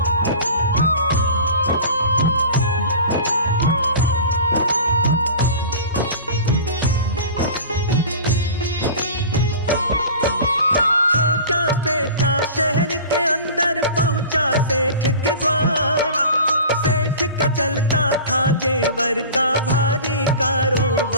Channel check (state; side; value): inverted; both; correlation -0.38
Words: शहर के अंदर पहुंचा सेठ के द्वार। सेठ का चलता था जेवर का भारी